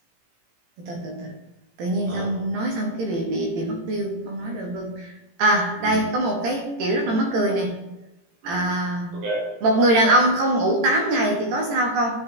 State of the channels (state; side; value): late; left; 18 ms